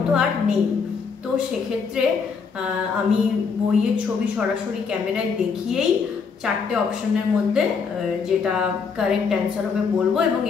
আর নেই। তো সেক্ষেত্রে আমি বইয়ের ছবি সরাসরি ক্যামেরায় দেখিয়েই 4টে অপশানের মধ্যে যেটা কারেক্ট অ্যান্সার হবে বলবো এবং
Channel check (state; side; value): quieter; right; 5.6 dB